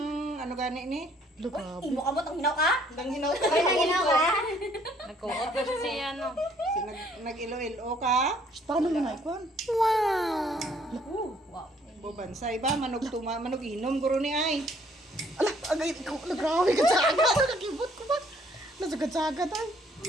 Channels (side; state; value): both; normal; correlation 0.63